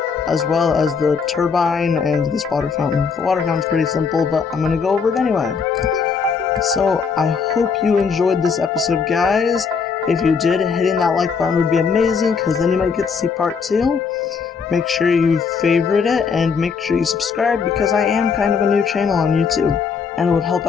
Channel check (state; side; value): quieter; right; 5.7 dB